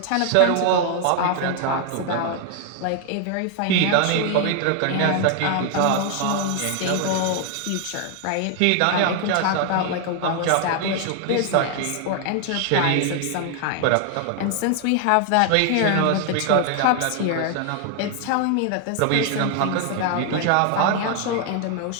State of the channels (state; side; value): different; both; correlation 0.00